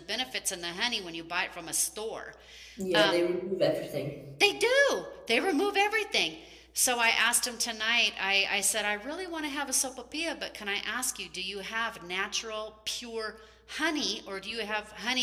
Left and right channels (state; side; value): identical; both; correlation 1.00